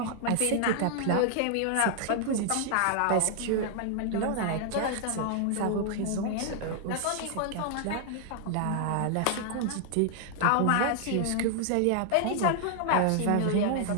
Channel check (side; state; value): both; different; correlation 0.00